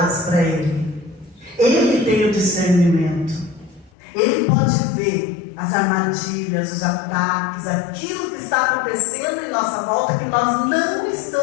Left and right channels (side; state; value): right; drops out; at 3.9 s